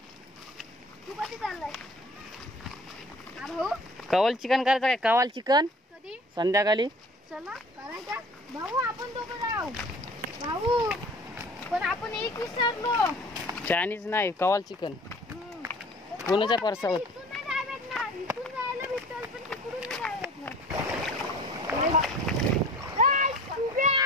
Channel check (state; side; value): normal; both; correlation 0.47